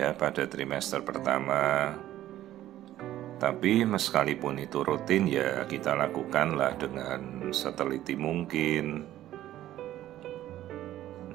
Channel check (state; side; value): quieter; left; 13.4 dB